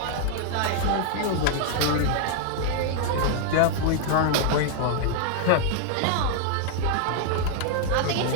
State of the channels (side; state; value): both; different; correlation 0.00